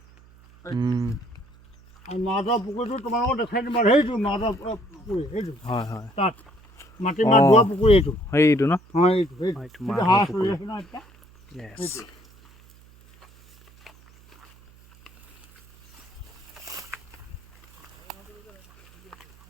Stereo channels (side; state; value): right; noise; hum, 26 dB below the sound